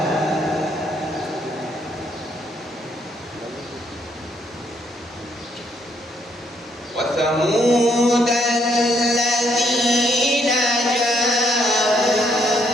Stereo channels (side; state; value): both; normal; correlation 0.71